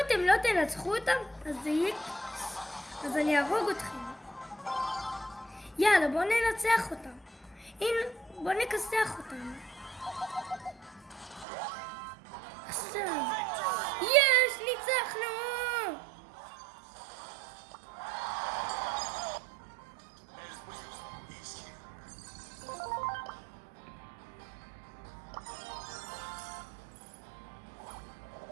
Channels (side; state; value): left; drops out; at 11.5 s